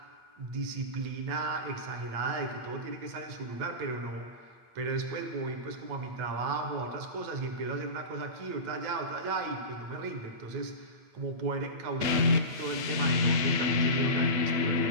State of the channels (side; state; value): left; late; 8.9 ms